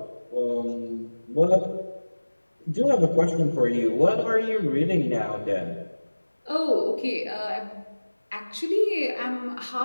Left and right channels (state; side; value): inverted; both; correlation -1.00